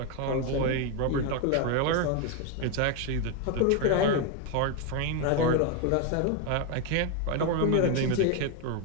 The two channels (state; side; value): different; both; correlation 0.01